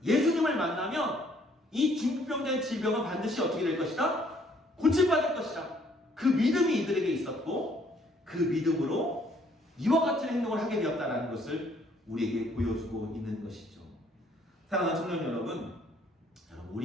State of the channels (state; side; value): normal; both; correlation 0.64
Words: 예수님을 만나면 이 중풍병자의 질병은 반드시 어떻게 될 것이다? 고침받을 것이다. 그 믿음이 이들에게 있었고 그 믿음으로 이와 같은 행동을 하게 되었다는 것을 우리에게 보여주고 있는 것이죠. 사랑하는 청년 여러분,